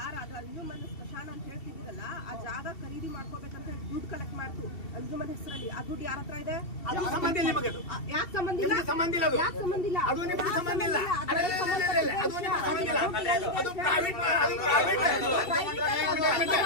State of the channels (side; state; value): right; late; 2.7 ms